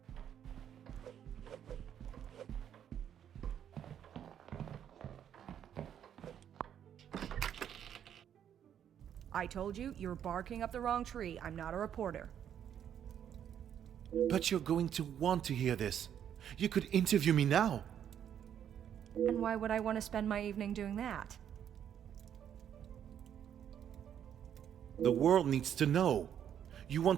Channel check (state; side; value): quieter; left; 9.4 dB